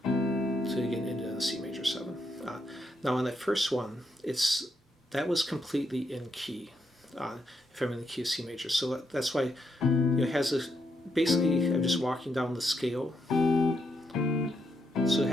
to again into the C major 7. Now on that first one, that was completely in key, if I'm in the key of C major. So that's why it has a, basically I'm just walking down the scale. So it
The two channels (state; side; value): normal; both; correlation 0.80